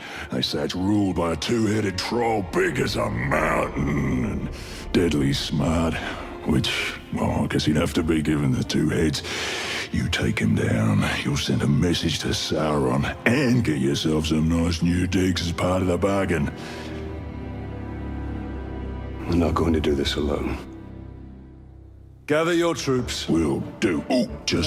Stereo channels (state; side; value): identical; both; correlation 1.00